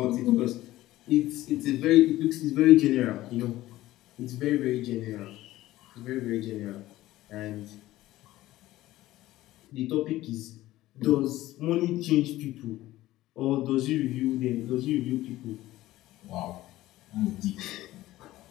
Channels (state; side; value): quieter; right; 16.1 dB